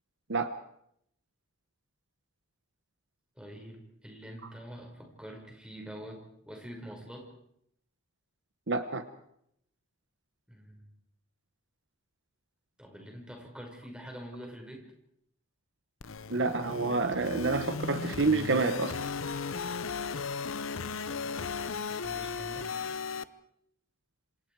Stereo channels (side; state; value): both; normal; correlation -0.04